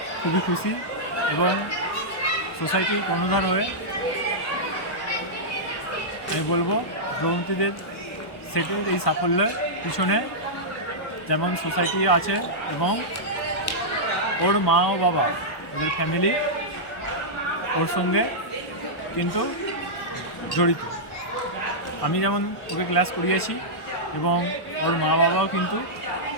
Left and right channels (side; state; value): right; late; 1.1 ms